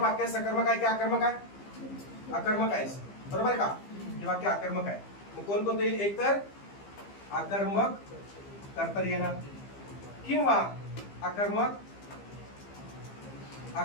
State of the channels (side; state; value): right; late; 15 ms